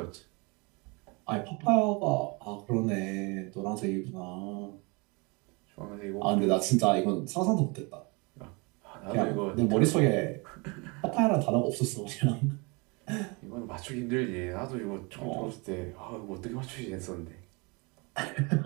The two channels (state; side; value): quieter; left; 29.1 dB